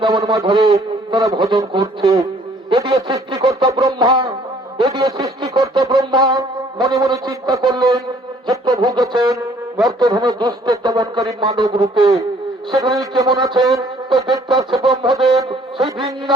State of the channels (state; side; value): normal; both; correlation 0.59